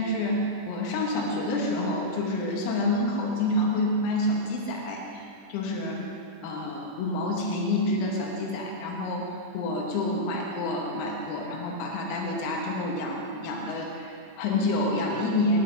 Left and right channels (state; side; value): late; right; 21 ms